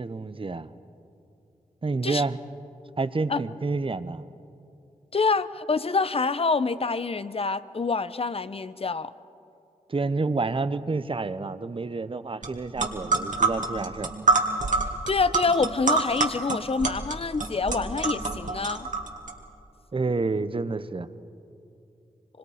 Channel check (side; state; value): both; normal; correlation 0.34